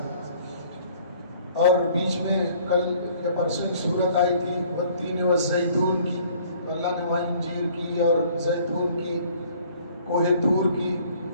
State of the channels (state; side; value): inverted; both; correlation -0.56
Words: اور بیچ میں کل یا پرسوں ایک صورت آئی تھی والتین والزیتون کی، تو اللہ نے وہاں انجیر کی اور زیتون کی، کوہ طور کی،